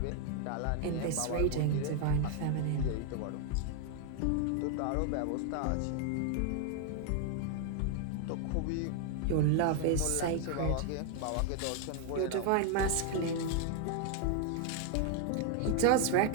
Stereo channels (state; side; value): different; both; correlation 0.00